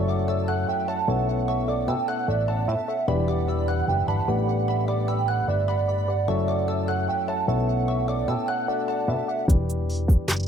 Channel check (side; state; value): both; normal; correlation 0.70